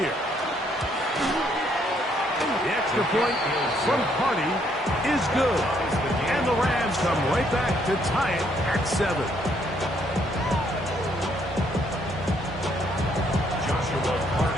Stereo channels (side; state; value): both; normal; correlation 0.70